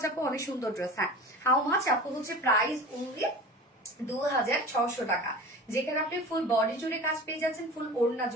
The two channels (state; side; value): normal; both; correlation 0.36